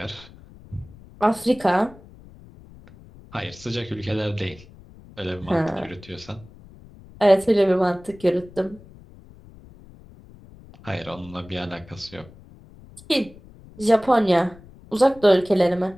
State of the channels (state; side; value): noise; left; rumble, 22 dB below the sound